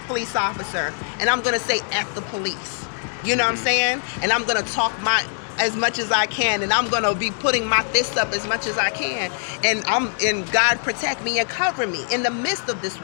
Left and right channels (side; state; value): right; silent; digital silence